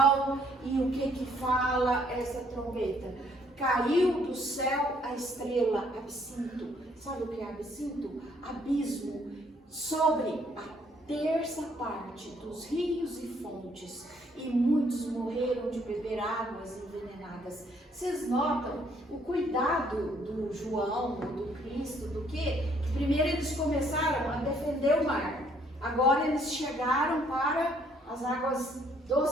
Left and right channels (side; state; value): both; normal; correlation 0.65